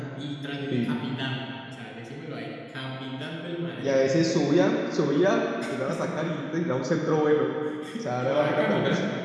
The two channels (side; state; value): both; identical; correlation 1.00